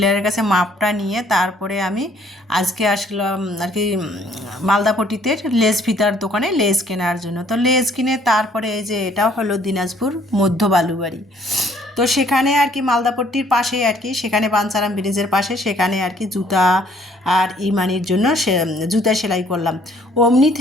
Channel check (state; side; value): normal; both; correlation 0.62